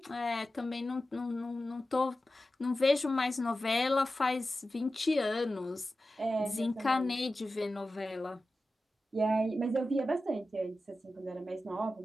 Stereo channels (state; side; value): normal; both; correlation 0.93